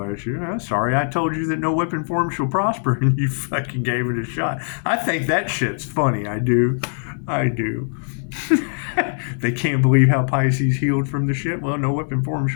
you. Sorry I told you that no weapon form shall prosper and you fucking gave it a shot. I think that shit's funny. I do. They can't believe how Pisces healed from the shit. Well, no weapon form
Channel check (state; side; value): silent; right; 56 dB below the other